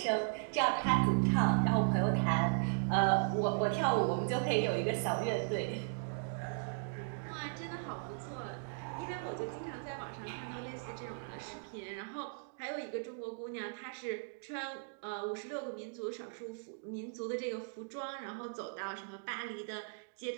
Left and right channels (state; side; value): silent; left; digital silence